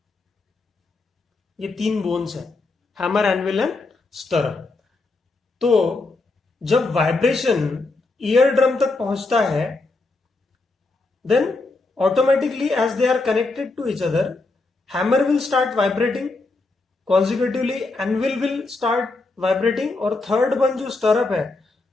ये 3 बोन्स है, हैमर, एनविल एंड स्टरअप। तो जब वाइब्रेशन ईयर ड्रम तक पहुंचता है, then automatically as they are connected to each other, hammer will start vibrating, consecutively anvil will start vibrating, और थर्ड वन जो स्टरअप है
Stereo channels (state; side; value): quieter; right; 3.4 dB